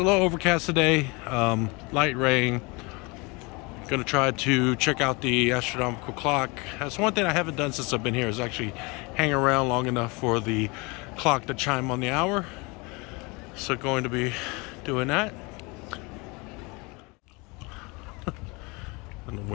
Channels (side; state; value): right; quieter; 27.4 dB